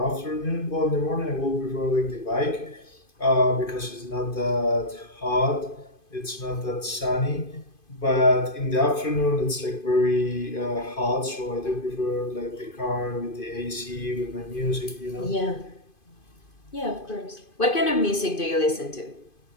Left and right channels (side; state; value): right; late; 2.5 ms